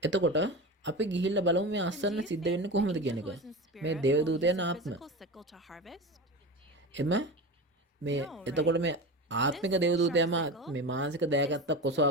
එතකොට අපි ගිහිල්ලා බලමු මේ අස්වැන්න සිද්ධ වෙන්නේ කොහොමද කියන එක. මේ දේවදූතයන් ආත්ම. එම මේ එතකොට මේ ආත්මික දේවදූතයම මේ මානසික දෑකැත්තක්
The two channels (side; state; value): both; normal; correlation 0.27